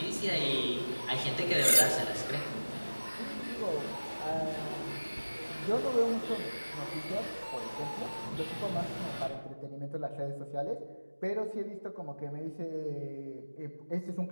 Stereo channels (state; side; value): inverted; both; correlation -1.00